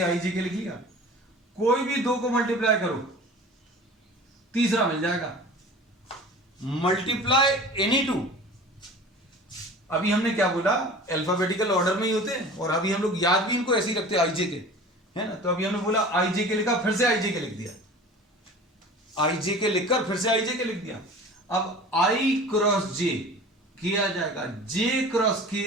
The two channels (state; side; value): normal; both; correlation 0.40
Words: के लिख लिया। कोई भी दो को मल्टीप्लाई करो, तीसरा मिल जाएगा। मल्टीप्लाई एनी टू, अभी हमने क्या बोला, अल्फाबेटिकल ऑर्डर में ही होते हैं, और अभी हम लोग याद भी इनको ऐसे ही रखते हैं, आई जे के, है ना। तो अभी हमने बोला आई जे के लिखा, फिर से आई जे के लिख दिया, आई जे के लिखकर फिर से आई जे के लिख दिया। अब आई क्रॉस जे के आ जाएगा, जे क्रॉस के